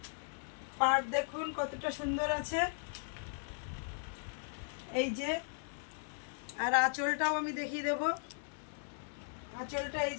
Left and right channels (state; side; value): silent; right; 53 dB below the other